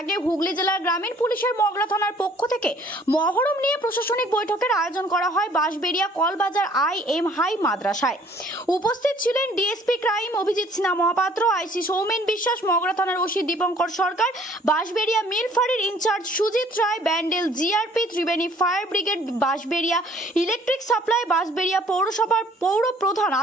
হুগলি জেলার গ্রামীণ পুলিশের মগরা থানার পক্ষ থেকে মহরম নিয়ে প্রশাসনিক বৈঠকের আয়োজন করা হয় বাঁশবেড়িয়া কলবাজার IM হাই মাদ্রাসায়। উপস্থিত ছিলেন DSP crime Abhijit Sinha Mahapatra, IC Soumen Biswas, Mogra থানার ওসি দীপঙ্কর সরকার, বাঁশবেড়িয়া মিল ফাঁড়ির incharge Sujit Roy, Bandel GRP, Tribeni fire brigade, Bansberia electric supply, Bansberia পৌরসভার পৌর প্রধান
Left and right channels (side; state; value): both; normal; correlation 0.57